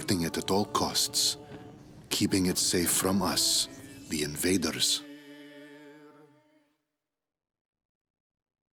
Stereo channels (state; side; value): identical; both; correlation 1.00